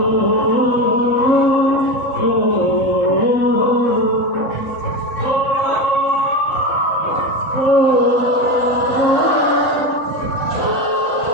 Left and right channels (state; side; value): late; right; 4.0 ms